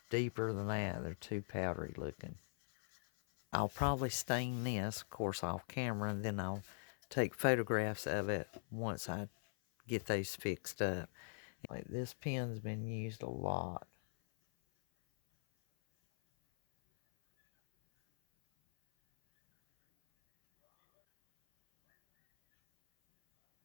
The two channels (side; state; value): right; silent; 50 dB below the other